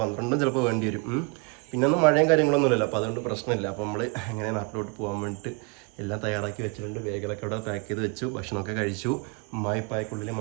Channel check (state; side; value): quieter; left; 31.8 dB